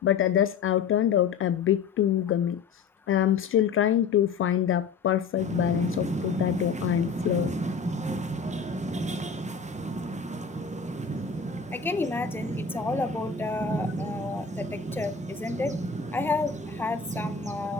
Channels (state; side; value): quieter; right; 5.7 dB